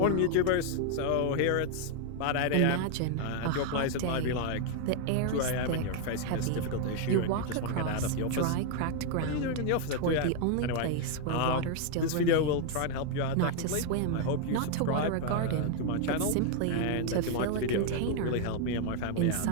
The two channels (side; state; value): both; different; correlation 0.00